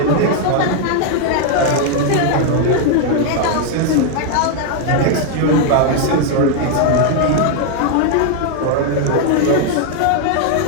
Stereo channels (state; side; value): different; both; correlation 0.00